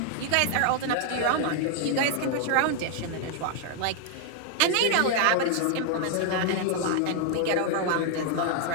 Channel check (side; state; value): both; different; correlation 0.00